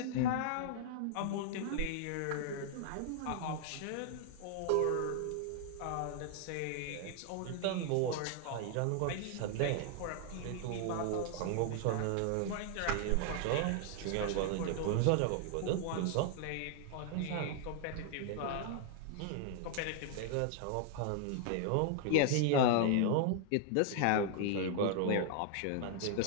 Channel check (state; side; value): different; both; correlation 0.00